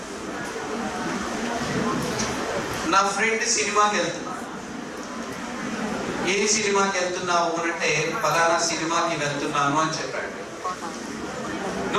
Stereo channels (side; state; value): both; identical; correlation 1.00